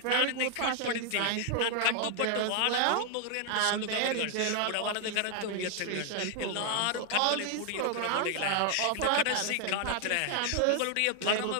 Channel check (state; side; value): different; both; correlation 0.00